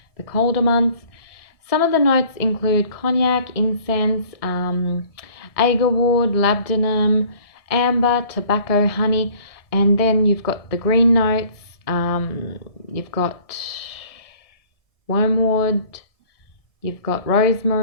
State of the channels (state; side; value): late; right; 1.7 ms